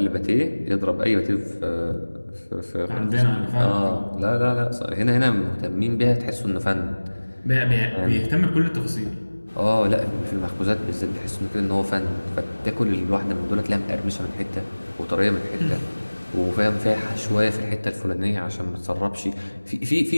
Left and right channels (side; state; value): both; inverted; correlation -1.00